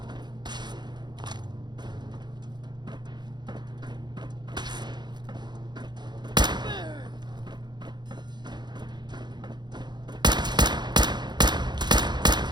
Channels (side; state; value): left; late; 0.21 ms